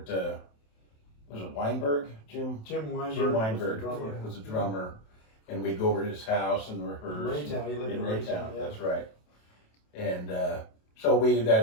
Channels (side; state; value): right; late; 27 ms